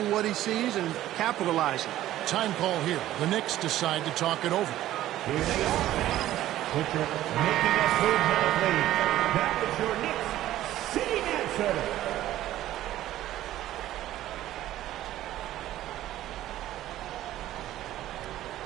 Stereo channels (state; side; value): quieter; left; 13.9 dB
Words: what he sees and capitalizing. Time call here. The Knicks decide to talk it over. Here they are. Picture making us move now, please. That was your Knicks sitting answer.